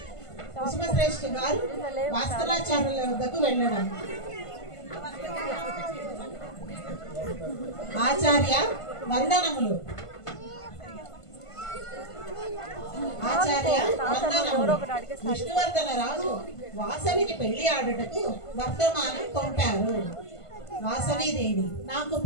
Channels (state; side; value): late; right; 1.5 ms